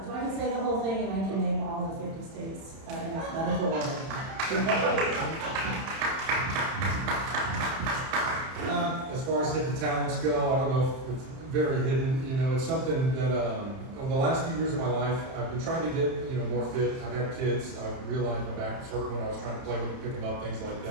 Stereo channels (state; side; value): late; left; 31 ms